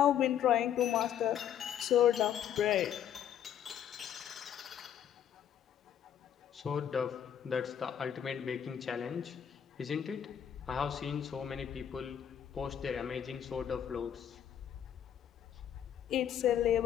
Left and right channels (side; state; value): right; quieter; 9.5 dB